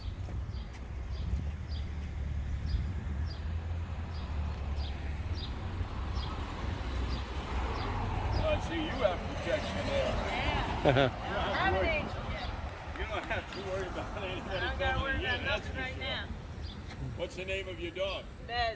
See, you have protection there. Yeah. You don't have to worry about anybody. I don't got to worry about nothing right now. What's the name of your dog?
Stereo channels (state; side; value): identical; both; correlation 1.00